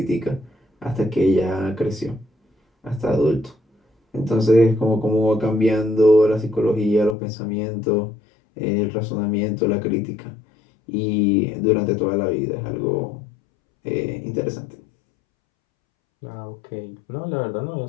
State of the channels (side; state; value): right; drops out; at 7.2 s